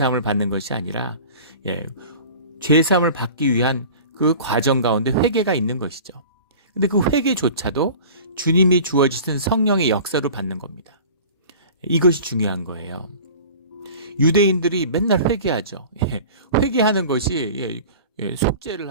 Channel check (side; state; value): both; inverted; correlation -0.41